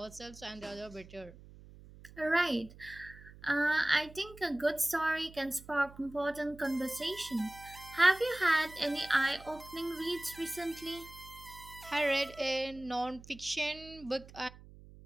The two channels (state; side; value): noise; right; hum, 19 dB below the sound